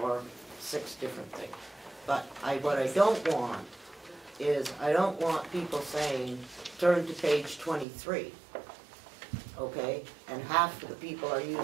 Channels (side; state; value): left; drops out; at 7.9 s